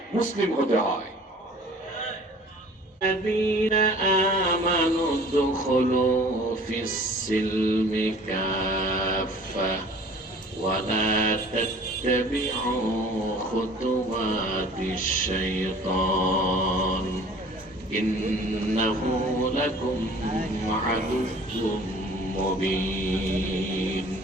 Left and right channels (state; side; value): normal; both; correlation 0.48